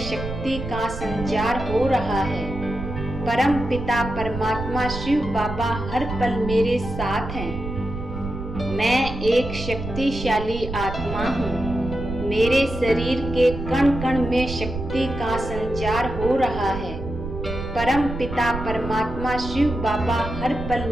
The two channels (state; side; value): noise; right; rumble, 7 dB below the sound